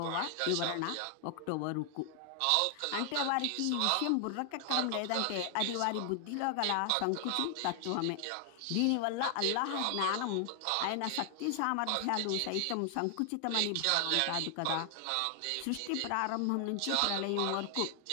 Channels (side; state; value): both; different; correlation 0.00